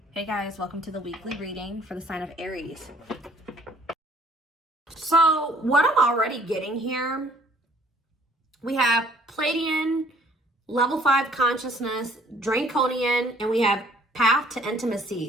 Hey guys, welcome to the weekly reading for the sign of Aries. So what I'm already getting here, we have Pleiadian, level 5 consciousness, Draconian, and we have path to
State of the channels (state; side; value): normal; both; correlation 0.59